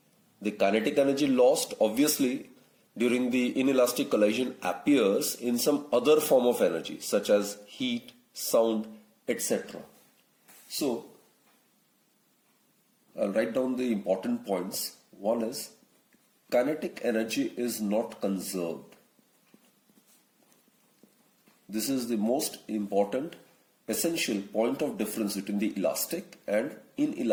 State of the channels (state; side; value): identical; both; correlation 1.00